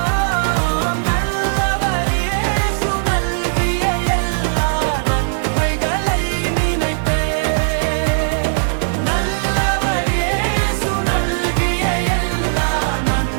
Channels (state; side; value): silent; left; 67 dB below the other